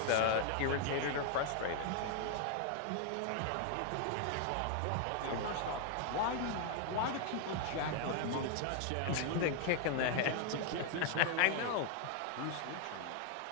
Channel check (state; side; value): different; both; correlation 0.00